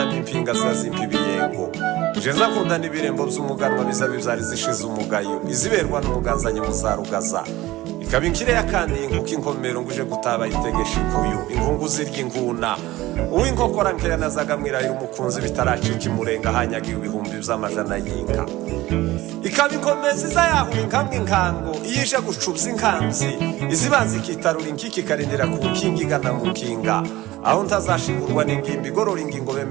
zazimpa ibiyengo nje nzakunda n'ibirembo by'umuganwa biza bibyari zishize umugayo iziberwa n'umuganzanye muzarugaza ikaba inkire yakandi inkuko inkomero nguje gutaba itegesha ikuyu inkungu zirya inguna uw'inkokora nkeya nazaga mwirahira umukunzi bitaracika imurenga hanyagiye ibihumbi by'amajana y'inka. ikaba inkomezi zayahura inkamwe inkango iyije gucubza inkamzi izibanza ikitarura inkiki ikarindira ku nkingi igana mu nkinga aho ntazashingurwa n'ingimbi igorora ingingo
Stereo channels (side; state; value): left; quieter; 17.5 dB